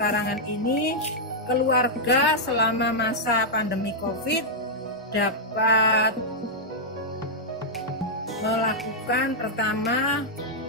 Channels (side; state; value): both; normal; correlation -0.07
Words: ini, keluarga selama masa pandemi COVID dapat melakukan pertama